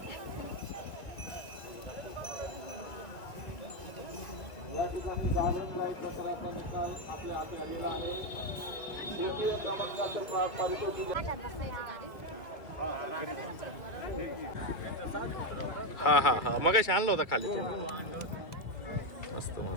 या ठिकाणी गार्डन लाईट प्रकाराचा निकाल आपल्या हाती आलेला आहे. तृतीय क्रमांकाचे पारितोषिक हा हा हा मगाशी आणला होता खाली तुम्ही. मस्त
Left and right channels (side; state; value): right; late; 2.6 ms